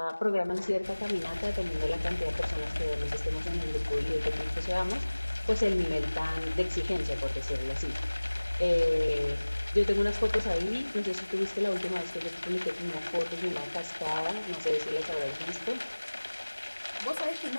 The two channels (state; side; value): inverted; both; correlation -1.00